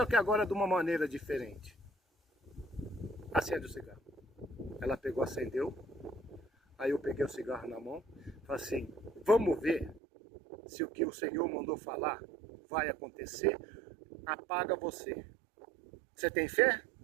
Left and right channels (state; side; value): drops out; left; at 10.0 s